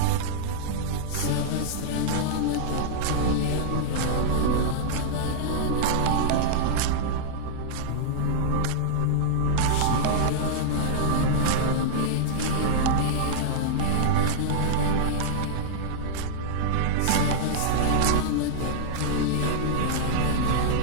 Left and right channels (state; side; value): different; both; correlation -0.01